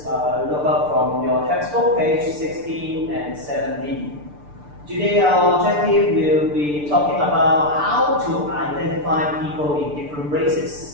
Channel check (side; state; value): left; late; 6.8 ms